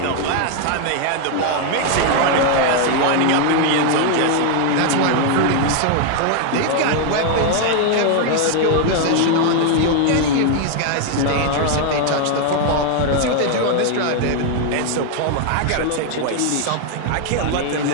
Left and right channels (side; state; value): both; different; correlation 0.01